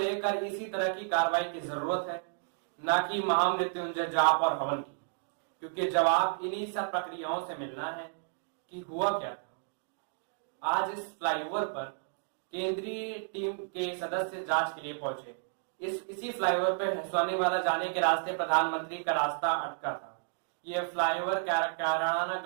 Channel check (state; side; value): silent; left; digital silence